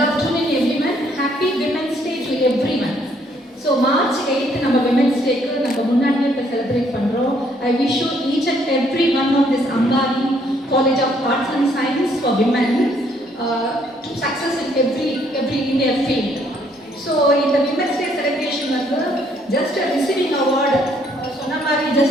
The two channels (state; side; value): normal; both; correlation 0.67